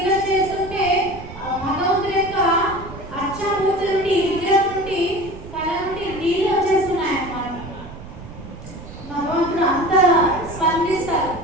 చేస్తుంటే భగవంతుడి యొక్క అర్చామూర్తి నుండి, విగ్రహం నుండి, కళ నుండి నీళ్ళు వచ్చేస్తున్నాయి అన్నమాట. భగవంతుడు అంత స్పందిస్తారు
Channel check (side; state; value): right; noise; rumble, 15 dB below the sound